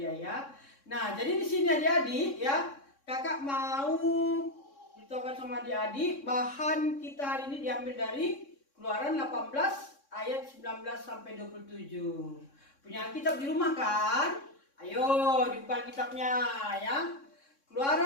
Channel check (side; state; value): right; late; 3.6 ms